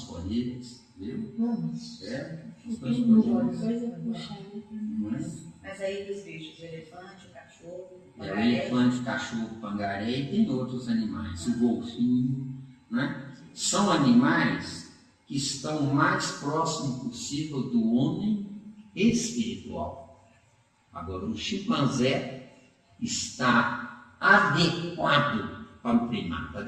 viu? Não, mas Estamos não disponíveis. vai. Não é? Mas aí dos bichos, o elefante, o cachorro, o O pangaré. elefante, o cachorro, o pangaré e tem outros animais, o golfinho, né? São animais que estão o mais próximo possível do homem espiritual. Agora, o chimpanzé está adequado para o primata,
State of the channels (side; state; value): both; identical; correlation 1.00